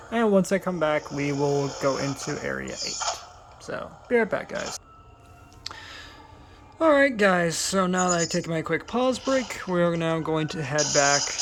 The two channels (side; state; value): both; identical; correlation 1.00